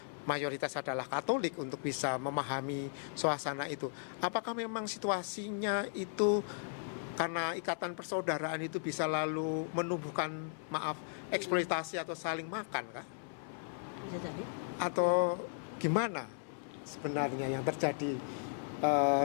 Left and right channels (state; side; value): silent; right; 54 dB below the other